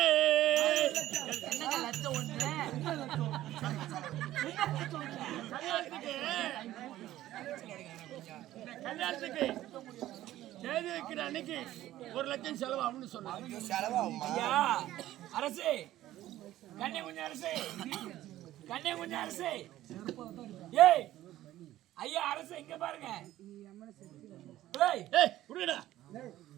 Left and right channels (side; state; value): left; quieter; 14.4 dB